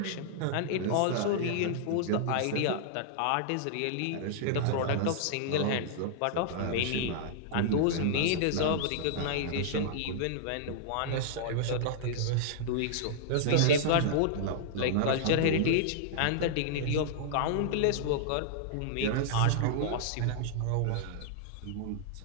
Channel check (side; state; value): both; different; correlation -0.01